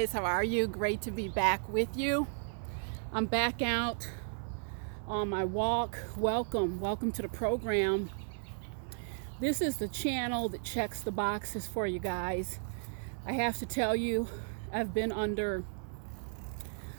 how are you? Great to be back with you. I'm back out on my walk. Welcome to the program. This is the channel that checks the boxes for you guys. I have to tell you, I've been under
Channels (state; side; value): silent; left; 55 dB below the other